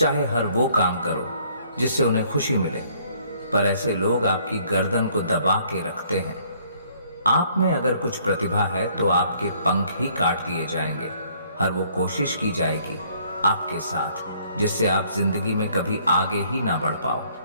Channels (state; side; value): inverted; both; correlation -0.62